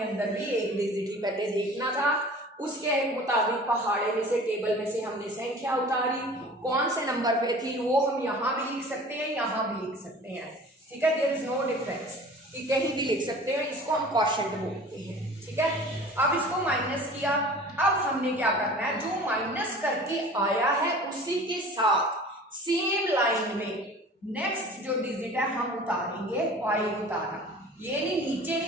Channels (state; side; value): normal; both; correlation 0.43